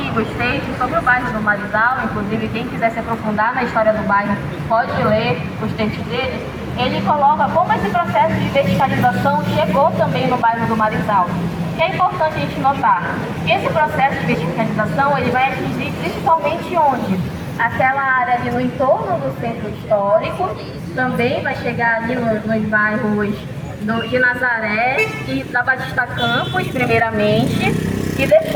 textos sobre o bairro do Marizal, inclusive quem quiser se aprofundar na história do bairro pode ler os textos dele. Ele coloca como esse processo de verticalização chegou também no bairro do Marizal. O que é importante a gente notar? Que esse processo de verticalização ele vai atingir principalmente onde? Aquela área ali no entorno do centro histórico, também vai chegar ali nos bairros de Nazaré e da Batista Campos, primeiramente, e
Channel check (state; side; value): identical; both; correlation 1.00